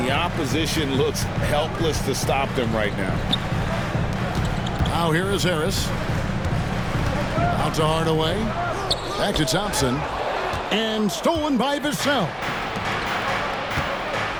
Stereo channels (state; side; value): identical; both; correlation 1.00